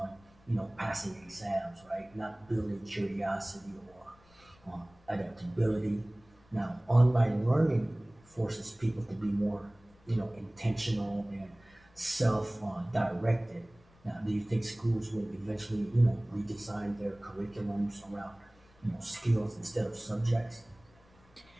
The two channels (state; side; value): noise; left; rumble, 29 dB below the sound